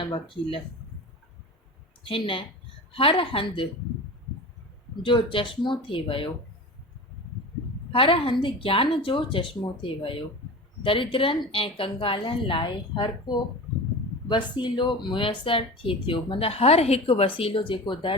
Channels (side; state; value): both; normal; correlation 0.32